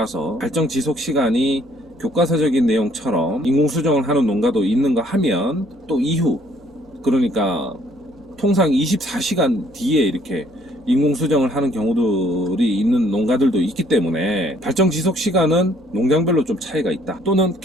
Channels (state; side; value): normal; both; correlation 0.62